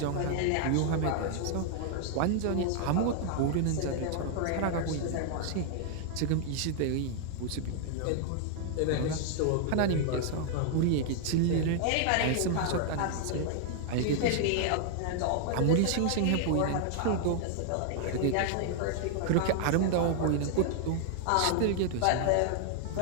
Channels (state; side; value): different; both; correlation 0.00